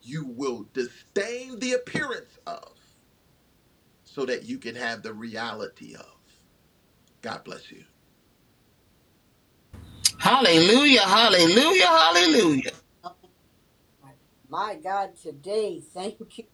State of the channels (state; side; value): identical; both; correlation 1.00